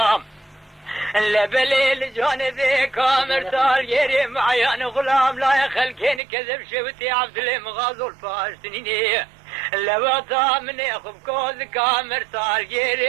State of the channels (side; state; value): left; drops out; at 6.2 s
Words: لبليل جانبي كامر تال يري معيان غلام لا يخلكين كذب شوتي عبد الله مغازو الفاشتنيني لبطا من يخب كوز كامر تال